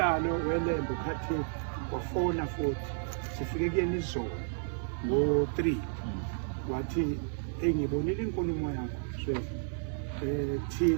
welembe ukhathi wafona futhi sifike kuyena izolo ngo-3 wathi engibonile inkulumo yakho so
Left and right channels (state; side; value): silent; left; digital silence